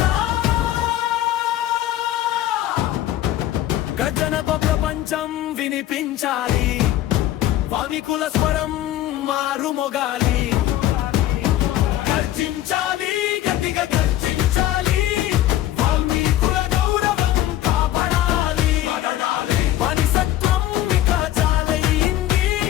గర్జనతో ప్రపంచం వినిపించాలి, వామికుల స్వరం మారుమోగాలి. గర్జించాలి, గట్టిగా గర్జించాలి, వాల్మీకుల గౌరవం కాపాడాలి. మనిషత్వం ఇక చాలయింది,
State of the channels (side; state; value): right; quieter; 13.6 dB